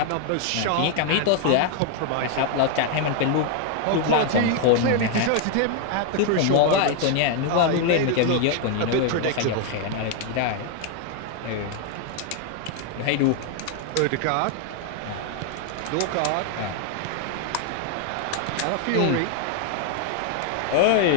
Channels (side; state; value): both; different; correlation 0.00